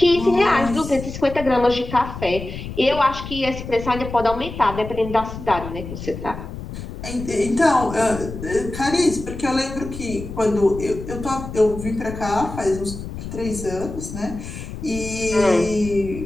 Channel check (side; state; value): left; noise; rumble, 9 dB below the sound